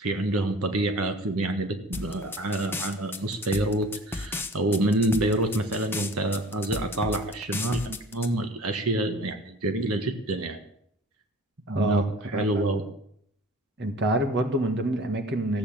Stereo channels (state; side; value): normal; both; correlation 0.44